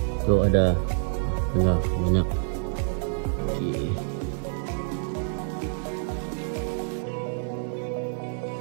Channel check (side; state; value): left; silent; digital silence